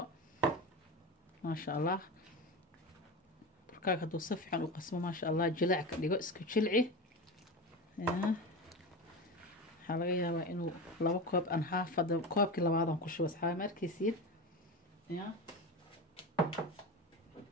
ما شاء الله. بركاك هدو صفحا وقسمه ما شاء الله جلع كديغو اسكو جلعي يا. waxaa laga yaabaa inuu laba koob aan half hada koobkii labaadan ku shubo asxaabe markiisiin ya.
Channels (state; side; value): normal; both; correlation 0.24